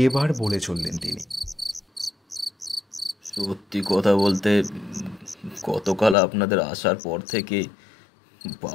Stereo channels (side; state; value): right; drops out; at 6.2 s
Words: এবার বলে চললেন তিনি, সত্যি কথা বলতে গতকাল আপনাদের আসার পর থেকে